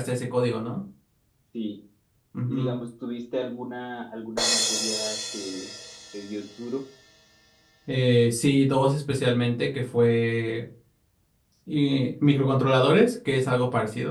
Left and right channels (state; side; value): identical; both; correlation 1.00